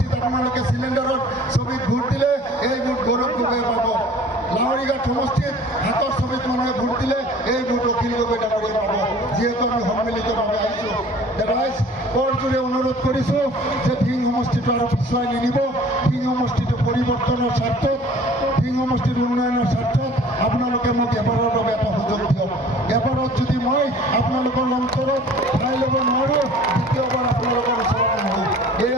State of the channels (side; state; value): both; normal; correlation 0.49